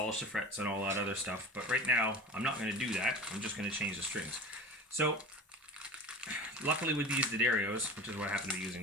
the frets and all that other stuff, but right now I'm not going to do that. I'm just going to change the strings. So luckily with these D'Addarios, which is what I happen to be using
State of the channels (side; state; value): both; normal; correlation 0.34